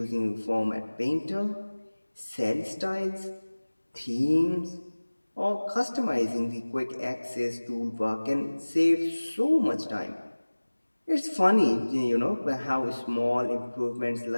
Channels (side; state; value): both; inverted; correlation -1.00